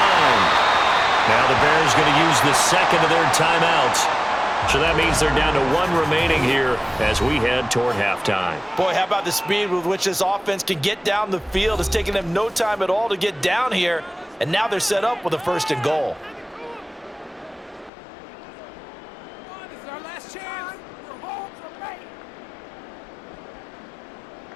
Now the Bears going to use the second of their timeouts. So that means they're down to one remaining here as we head toward halftime. Boy, how about the speed with which this offense can get down the field? It's taken them no time at all to get down here, and now they're set up with a first and goal. This is our last chance. We're home to make.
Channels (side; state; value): right; drops out; at 17.9 s